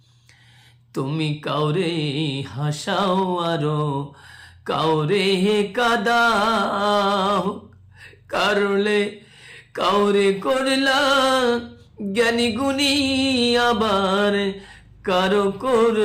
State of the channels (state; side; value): identical; both; correlation 1.00